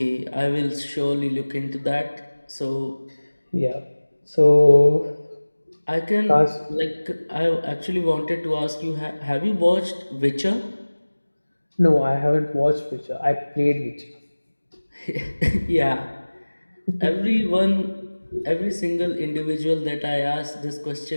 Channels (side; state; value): both; inverted; correlation -1.00